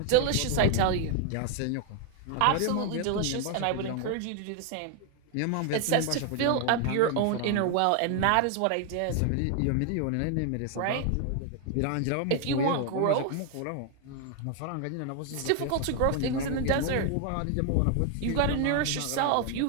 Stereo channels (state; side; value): different; both; correlation 0.00